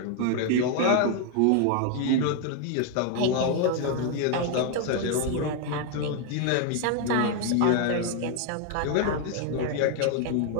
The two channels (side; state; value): both; different; correlation 0.01